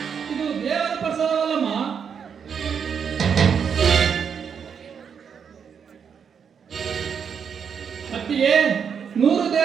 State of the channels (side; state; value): left; quieter; 7.0 dB